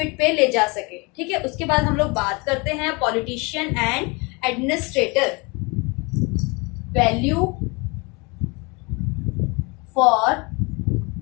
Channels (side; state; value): right; quieter; 28.3 dB